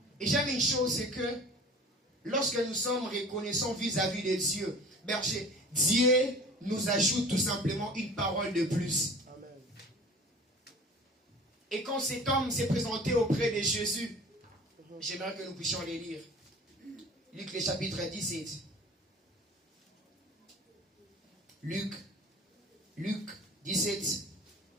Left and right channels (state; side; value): normal; both; correlation 0.42